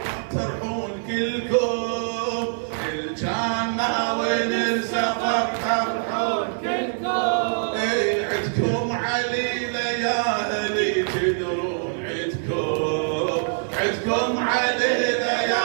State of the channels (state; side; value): silent; left; 58 dB below the other